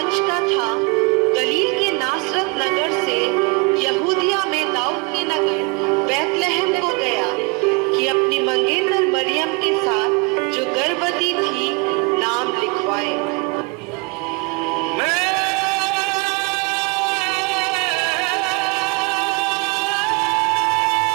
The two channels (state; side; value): quieter; left; 29.8 dB